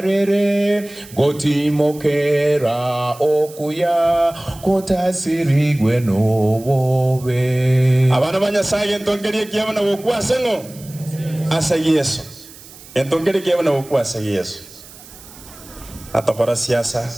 goti mokera okuya kota sirigwe no wobe. Abana banyasaye ntongeri kiyabana bokwase ngo asa Yesu. Ntongeri kiyabana bokwase Yesu. Atokora siasa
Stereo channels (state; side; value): noise; right; hiss, 20 dB below the sound